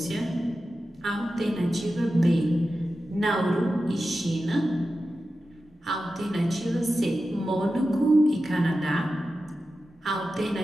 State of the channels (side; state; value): both; normal; correlation 0.92